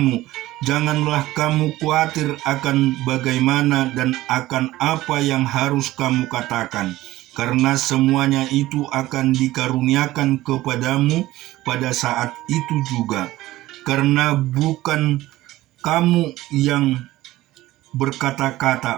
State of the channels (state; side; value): quieter; left; 16.6 dB